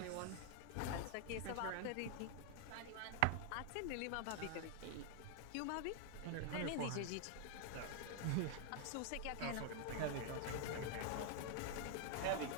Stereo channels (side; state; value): both; different; correlation 0.00